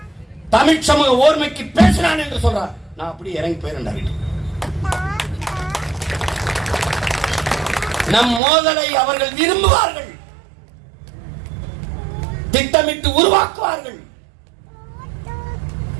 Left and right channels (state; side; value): drops out; left; at 8.4 s